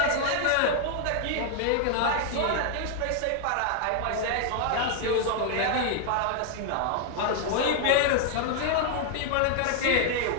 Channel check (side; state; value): both; different; correlation 0.00